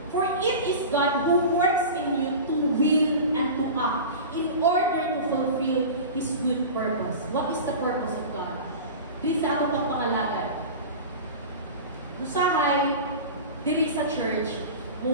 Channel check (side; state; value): both; inverted; correlation -0.32